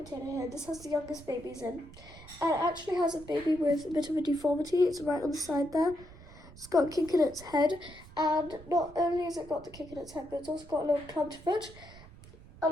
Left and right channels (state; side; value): noise; right; rumble, 19 dB below the sound